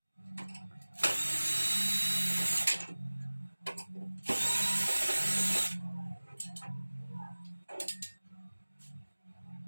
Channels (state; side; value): inverted; both; correlation -1.00